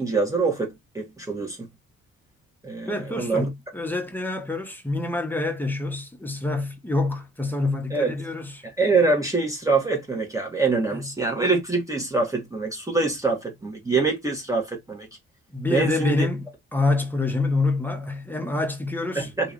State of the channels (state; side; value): normal; both; correlation 0.61